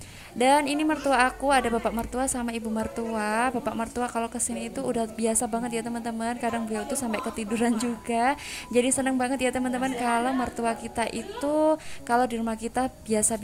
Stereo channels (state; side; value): identical; both; correlation 1.00